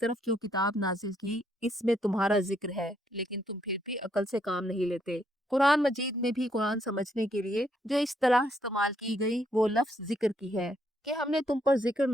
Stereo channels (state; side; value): normal; both; correlation 0.73